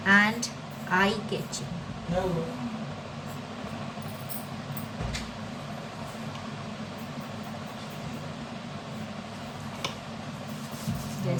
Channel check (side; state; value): both; identical; correlation 1.00